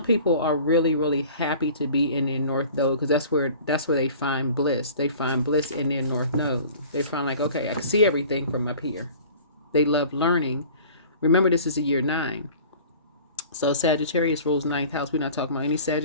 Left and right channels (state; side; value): inverted; both; correlation -0.46